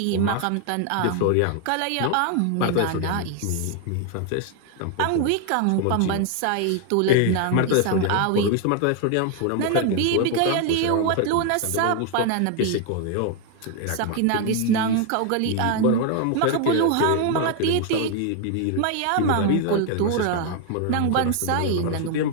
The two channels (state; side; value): different; both; correlation 0.01